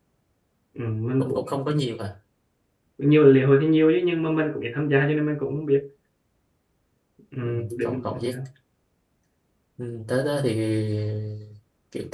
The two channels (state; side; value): identical; both; correlation 1.00